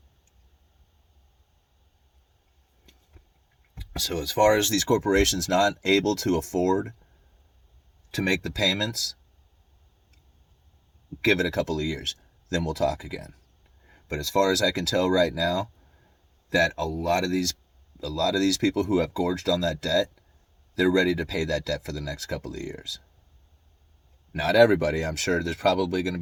So as far as these corporations not able to afford to make the payments, give it a couple of years, then we'll talk again. But as far as I can tell right now, that a lot of these people who have gorged on that debt, they're ready to pay that debt for the next couple of years. Not everybody. I'm sure there's probably going to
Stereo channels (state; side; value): identical; both; correlation 1.00